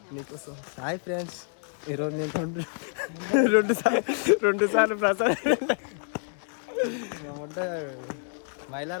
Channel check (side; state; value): right; silent; 56 dB below the other